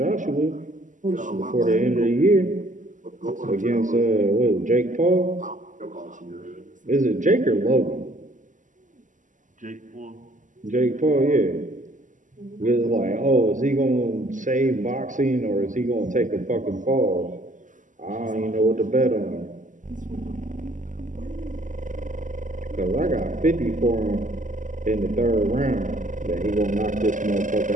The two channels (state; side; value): late; left; 0.37 ms